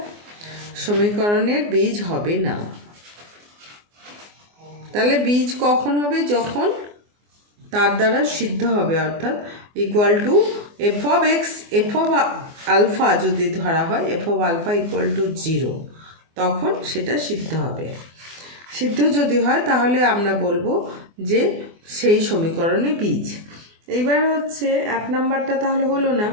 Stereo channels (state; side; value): late; left; 24 ms